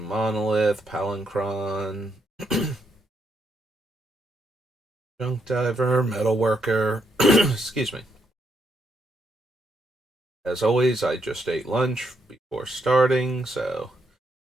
Monolith, Palancron, Junk Diver, Metalworker. Excuse me. As always, I just ate lunch before starting, so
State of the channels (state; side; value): normal; both; correlation 0.77